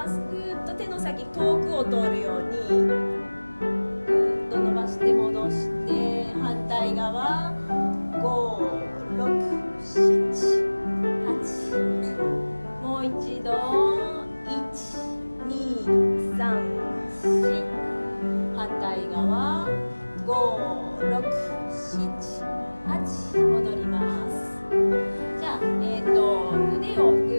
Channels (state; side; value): inverted; both; correlation -1.00